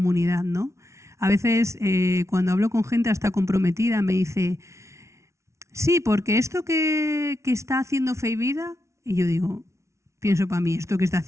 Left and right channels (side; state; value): left; late; 0.14 ms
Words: ¿no? A veces cuando hablo con gente hasta comprometida me dice, sí, porque esto que está haciendo Fe y Vida, y yo digo, pienso para mí, esto que está